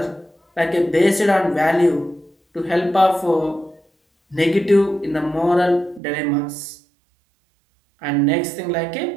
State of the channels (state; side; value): drops out; left; at 6.0 s